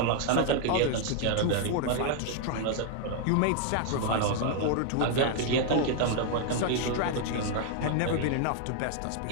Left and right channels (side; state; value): both; different; correlation 0.00